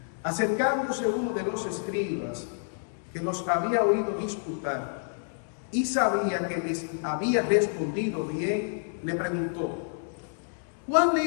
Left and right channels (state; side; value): silent; right; digital silence